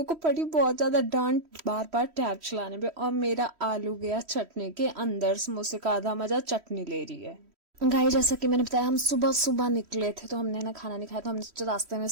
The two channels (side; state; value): left; late; 3.1 ms